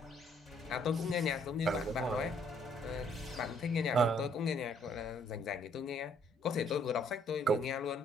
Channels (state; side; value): normal; both; correlation 0.66